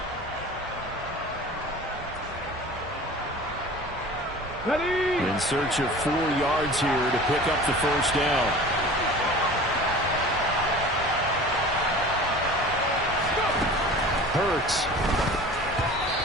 In search of 4 yards here to pick up the first down. Hurts.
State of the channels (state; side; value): normal; both; correlation 0.40